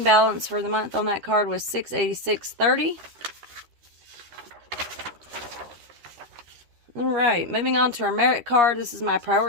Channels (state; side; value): late; left; 13 ms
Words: balance for the month on that card was $686.30. All right, moving on to our merit card. This is my